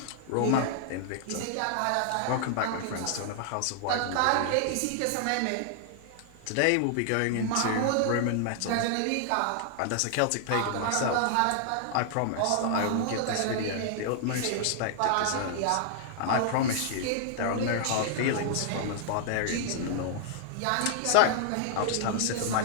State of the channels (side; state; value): both; different; correlation -0.01